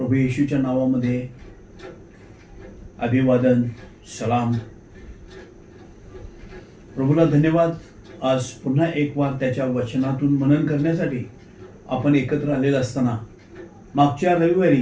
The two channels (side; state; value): both; identical; correlation 1.00